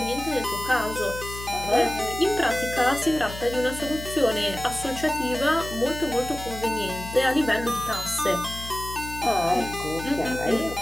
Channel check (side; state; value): left; noise; hum, 11 dB below the sound